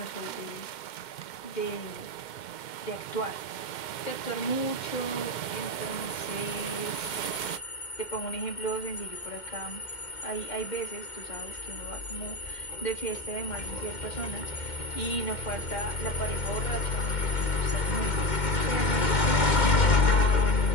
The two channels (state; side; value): late; right; 2.1 ms